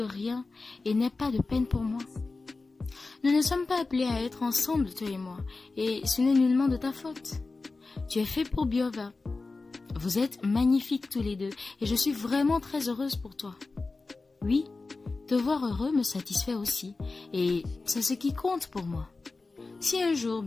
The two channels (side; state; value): right; quieter; 3.7 dB